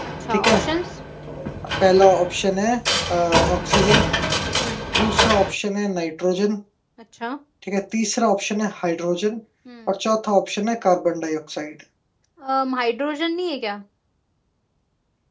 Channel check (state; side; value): identical; both; correlation 1.00